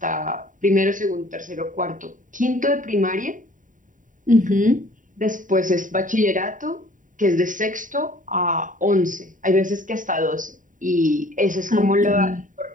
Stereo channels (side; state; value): left; late; 0.38 ms